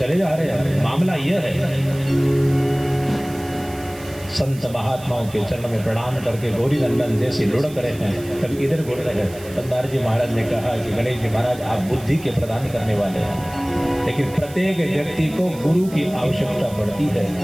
जा रहे हैं। मामला यह है, संत महात्माओं के चरण में प्रणाम करके गौरी नंदन जैसे लुढ़क रहे हैं, कभी इधर घुड़ रहे हैं। तब नारद जी महाराज ने कहा कि गणेश जी महाराज आप बुद्धि के प्रदान करने वाले हैं, लेकिन प्रत्येक व्यक्ति को गुरु की आवश्यकता पड़ती है,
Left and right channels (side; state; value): right; noise; hiss, 19 dB below the sound